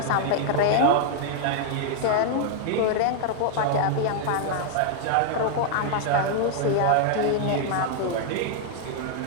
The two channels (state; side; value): different; both; correlation 0.00